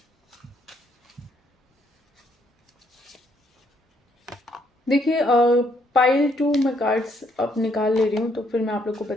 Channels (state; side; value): normal; both; correlation 0.71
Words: देखिए पाइल 2 मैं कार्ड्स अब निकाल ले रही हूँ, तो फिर मैं आप लोग को